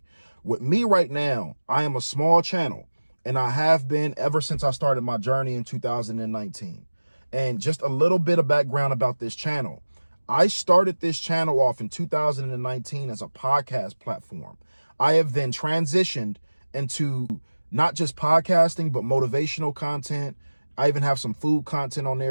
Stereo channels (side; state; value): both; inverted; correlation -1.00